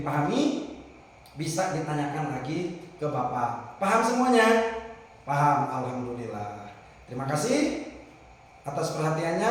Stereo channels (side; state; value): both; identical; correlation 1.00